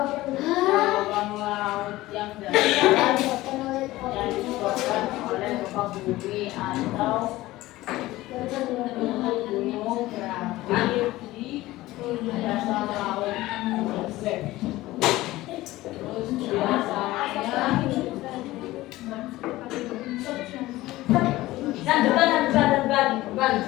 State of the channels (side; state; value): right; quieter; 17.5 dB